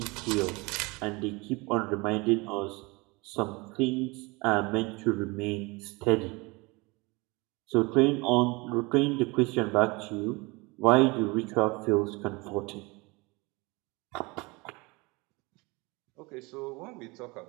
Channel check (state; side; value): quieter; left; 25.7 dB